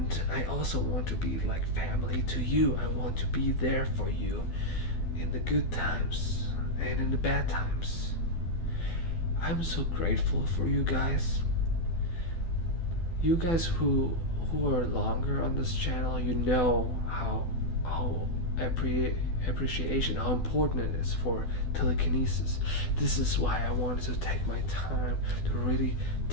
I also want to be like family to you. I want to be there for you in the good times and in the bad times. I'm so grateful for you guys. You guys who are longer on this channel, you know how appreciation, how important it is for telekinesis. This is why I wanted to take my time to really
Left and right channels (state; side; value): late; right; 12 ms